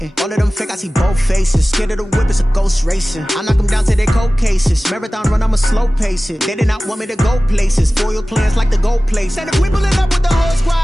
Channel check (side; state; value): both; normal; correlation 0.97